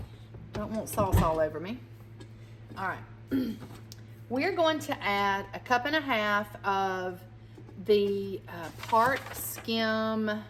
Don't want sauce all over me. All right. We're going to add 1.5 cups of the part skim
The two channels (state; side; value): identical; both; correlation 1.00